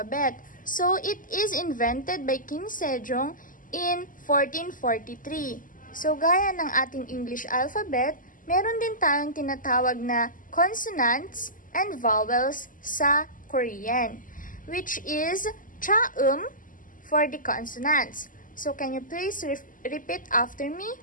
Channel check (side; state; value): right; late; 0.39 ms